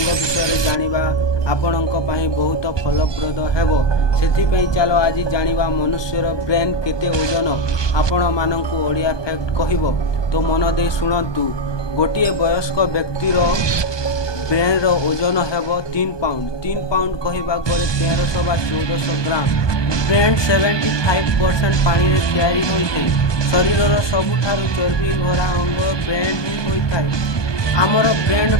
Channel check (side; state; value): right; late; 1.2 ms